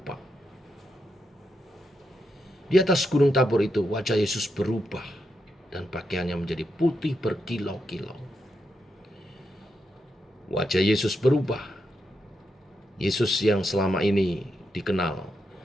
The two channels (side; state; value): both; normal; correlation 0.83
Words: Di atas Gunung Tabor itu wajah Yesus berubah dan pakaiannya menjadi putih berkilau-kilau. Wajah Yesus berubah. Yesus yang selama ini dikenal